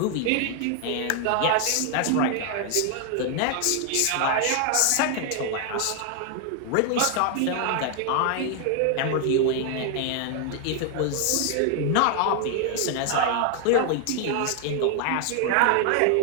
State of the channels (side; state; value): both; different; correlation 0.00